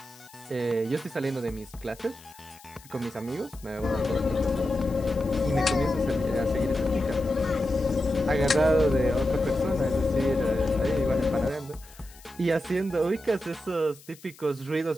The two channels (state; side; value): noise; left; hiss, 23 dB below the sound